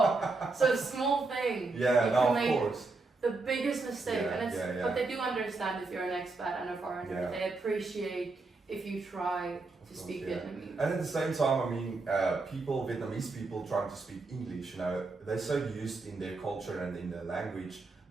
so small thing. Yeah, you no, can of make course. the biggest mistake, and it's but they do understand if you're an expat and a foreigner. Yeah. They appreciate if you try to speak Vietnamese. And at the same time, I mean, Vietnamese people trying to speak English, you know, they're so used in their culture and in their language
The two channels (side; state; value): left; quieter; 3.7 dB